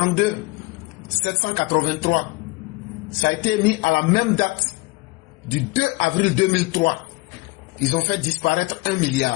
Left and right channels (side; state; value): right; quieter; 24.0 dB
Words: 783, ça a été émis à la même date du 2 avril 2003. Ils ont fait disparaître 1